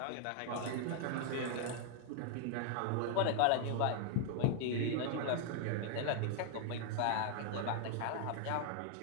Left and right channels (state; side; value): different; both; correlation 0.00